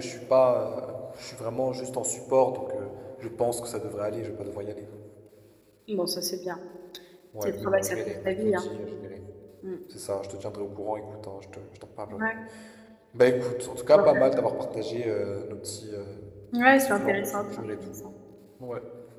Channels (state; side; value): identical; both; correlation 1.00